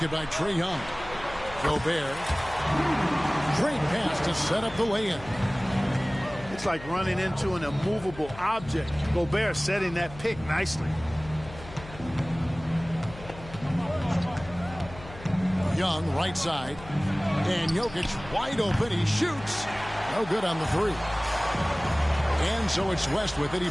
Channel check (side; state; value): left; noise; hum, 16 dB below the sound